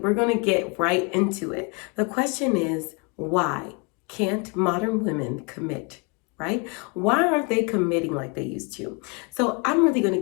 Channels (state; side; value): quieter; right; 32.4 dB